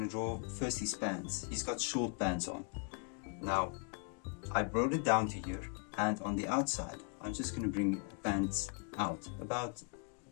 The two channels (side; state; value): right; quieter; 39.4 dB